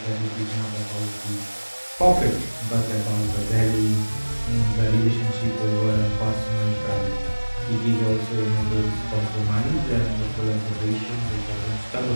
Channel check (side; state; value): both; inverted; correlation -1.00